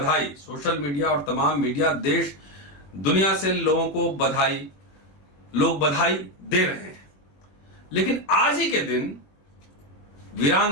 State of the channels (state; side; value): late; right; 21 ms